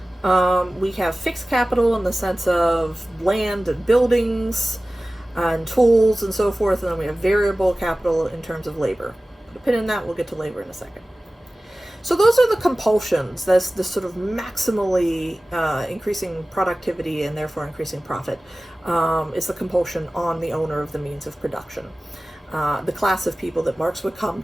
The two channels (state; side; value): normal; both; correlation 0.97